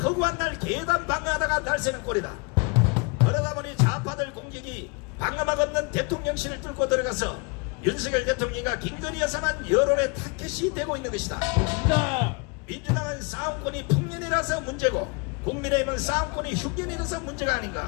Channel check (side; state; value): right; quieter; 31.3 dB